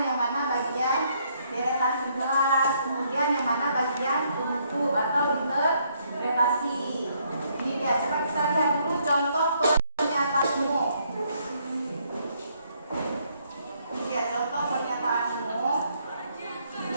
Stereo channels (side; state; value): both; inverted; correlation -0.70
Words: yang mana bagian deretan penjelas, kemudian kemudian yang mana bagian penutup atau interpretasi. Ini dia, coba kita lihat dulu contoh pernyataan umum. Ini dia contoh pernyataan umum.